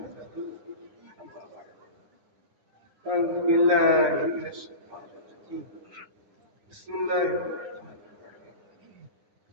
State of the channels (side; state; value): left; late; 9.7 ms